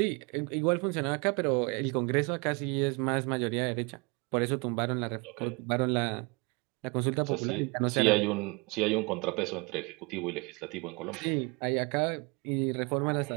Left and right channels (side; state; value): left; quieter; 29.1 dB